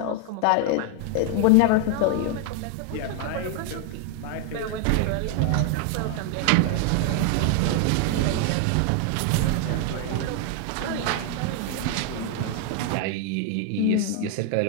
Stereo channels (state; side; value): different; both; correlation 0.00